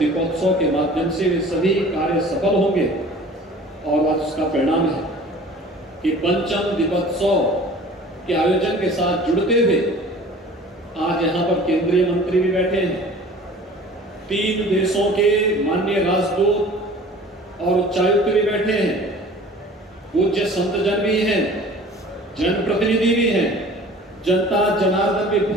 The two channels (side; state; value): both; normal; correlation 0.45